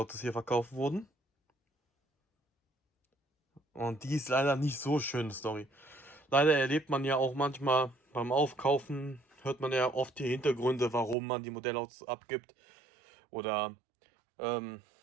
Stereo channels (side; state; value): left; drops out; at 11.2 s